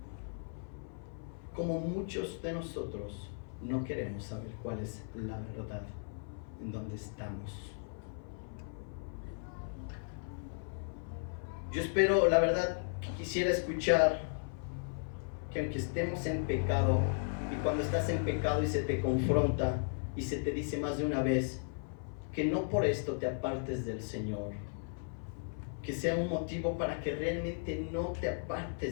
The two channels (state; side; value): silent; right; 54 dB below the other